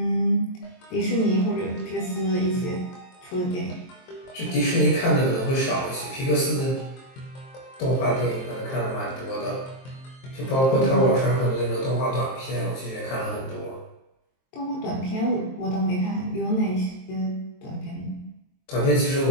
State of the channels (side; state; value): right; late; 23 ms